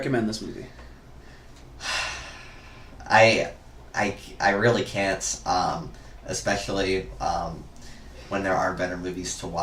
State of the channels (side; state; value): both; identical; correlation 1.00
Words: this movie? I really can't, especially when there are better movies to